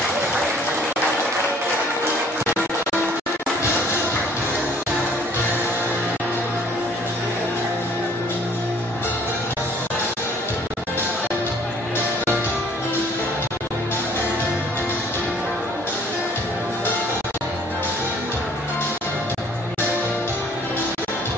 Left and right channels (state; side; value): normal; both; correlation 0.57